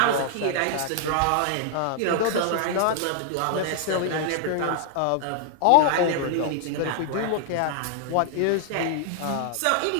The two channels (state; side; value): different; both; correlation 0.00